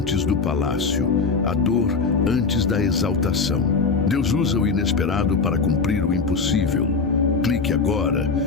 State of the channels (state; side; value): quieter; right; 4.7 dB